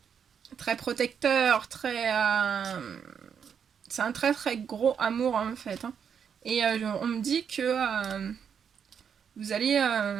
protecteurs, très, c'est un très très gros amour en fait, hein. Et on me dit que vous allez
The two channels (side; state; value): left; quieter; 7.4 dB